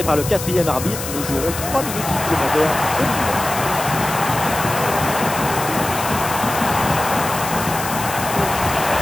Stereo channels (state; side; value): noise; left; hiss, 8 dB below the sound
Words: par le 4e arbitre. Nous jouerons 3 minutes supplémentaires au minimum.